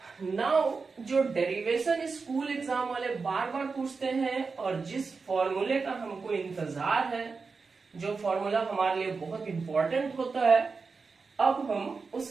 Now जो डेरिवेशन स्कूल एग्जाम वाले बार बार पूछते हैं और जिस फॉर्मूले का हमको इंतजार है, जो फॉर्मूला हमारे लिए बहुत इंपॉर्टेंट होता है, अब हम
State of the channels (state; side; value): quieter; left; 4.6 dB